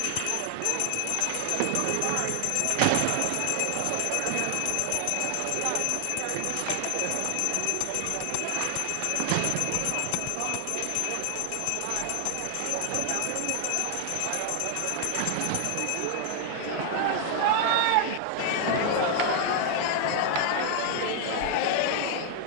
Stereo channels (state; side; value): different; both; correlation 0.00